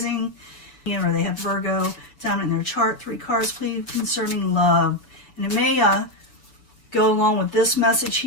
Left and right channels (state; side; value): late; right; 6.9 ms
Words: Or they have Virgo down in their chart. 3 cards, please, concerning love. And it may go along with this message